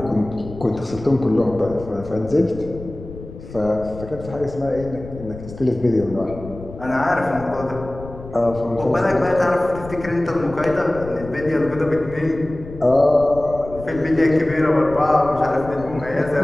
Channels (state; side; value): noise; left; rumble, 14 dB below the sound